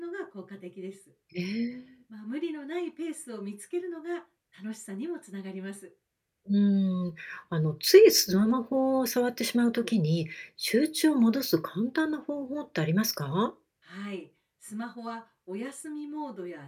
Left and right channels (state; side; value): identical; both; correlation 1.00